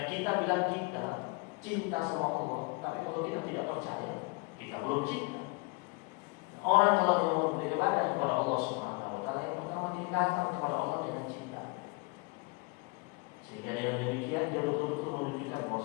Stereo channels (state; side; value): quieter; right; 29.2 dB